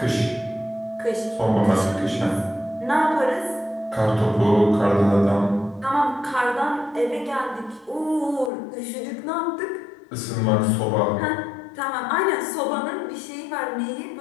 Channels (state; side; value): drops out; right; at 8.5 s